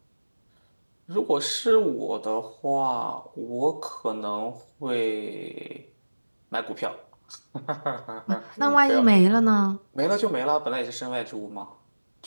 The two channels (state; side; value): inverted; both; correlation -1.00